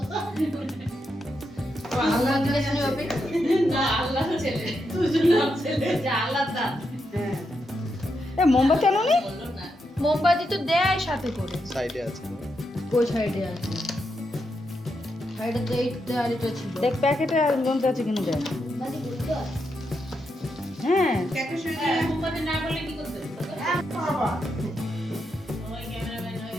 মোমবাতি আনোনি? মোমবাতি তো দেয় সাথে করে, সাইডে আছে। কোন সাইডে আছে? সাইডে তো এই দেয়ালিটা ছিল। দেখ প্যাকেটে আর গন্ধ আছে কিনা দেখ। হ্যাঁ প্যাকেট শুনে মোমবাতি না বলে কি করতে বাবা? ওই ক্যামেরাম্যান হয়ে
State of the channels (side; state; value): both; normal; correlation 0.83